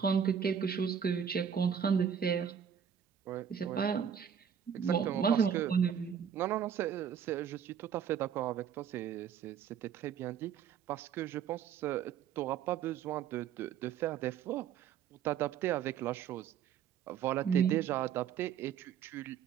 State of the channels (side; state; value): left; quieter; 8.2 dB